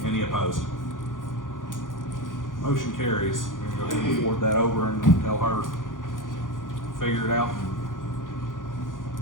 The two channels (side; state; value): right; late; 0.89 ms